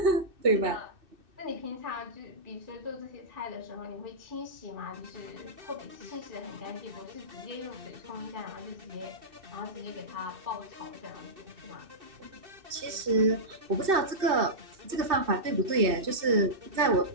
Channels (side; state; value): left; late; 2.6 ms